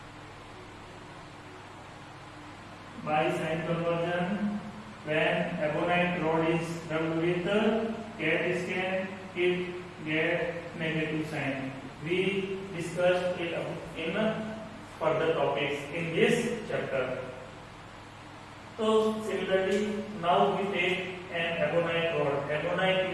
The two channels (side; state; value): both; identical; correlation 1.00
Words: By sign conversion, when ebonite rod is rubbed with cat skin, it gets negative sign. We discussed it in further topics in this chapter. So similarly, now we take an ebonite rod.